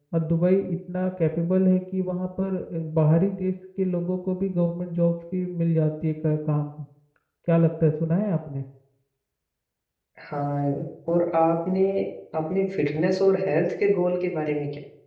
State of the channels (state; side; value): identical; both; correlation 1.00